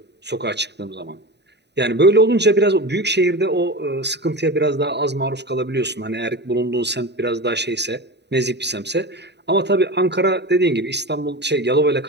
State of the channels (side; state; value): left; late; 0.50 ms